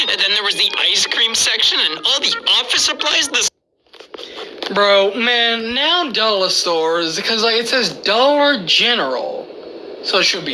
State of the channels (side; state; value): both; identical; correlation 1.00